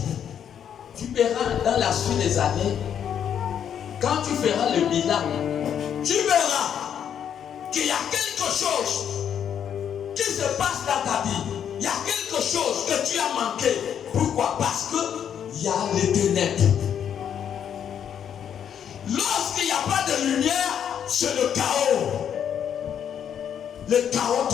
tu verras dans la suite des années, quand tu feras le bilan, tu verras qu'il y a quelque chose qui se passe dans ta vie. Il y a quelque chose que tu as manqué. Pourquoi? Parce qu'il y a les ténèbres. Lorsqu'il n'y a pas de lumière, c'est le chaos. Le chaos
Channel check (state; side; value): quieter; right; 8.8 dB